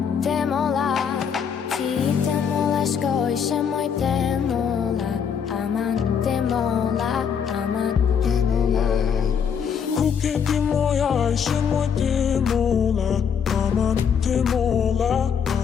Ti te mola, shkoj she moj te mola, aman te mola. Kuke ti moja, ajse moj te mola, aman te mola.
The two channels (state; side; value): quieter; right; 7.2 dB